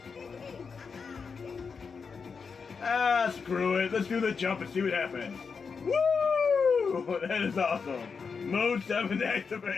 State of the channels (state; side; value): quieter; right; 5.5 dB